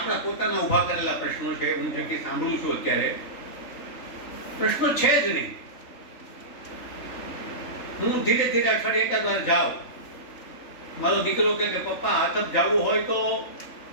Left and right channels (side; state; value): right; late; 3.4 ms